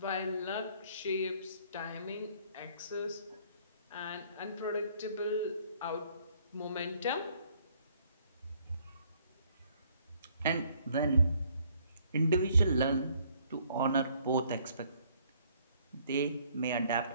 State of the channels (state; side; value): inverted; both; correlation -0.63